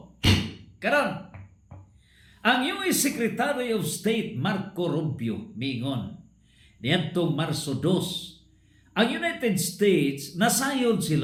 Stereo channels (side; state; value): both; identical; correlation 1.00